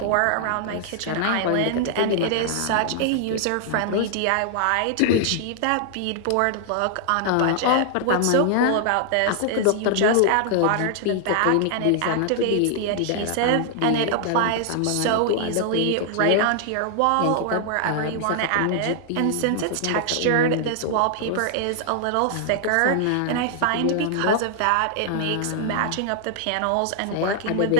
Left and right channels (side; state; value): both; different; correlation 0.00